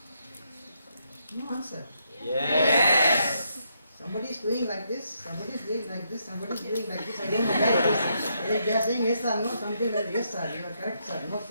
No answer. Yes. Somebody is doing like this, somebody is doing like this, somebody is doing like this. I don't know why it is. They are saying yes or no, something like yes sir, you are correct sir, no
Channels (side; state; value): both; inverted; correlation -0.77